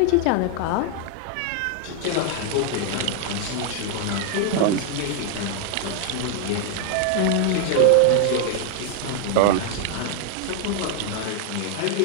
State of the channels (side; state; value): both; different; correlation 0.00